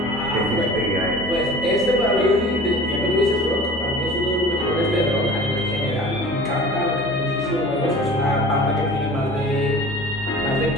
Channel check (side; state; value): both; normal; correlation 0.42